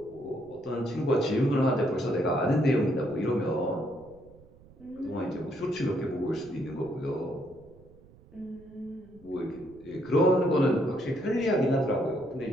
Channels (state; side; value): noise; right; rumble, 24 dB below the sound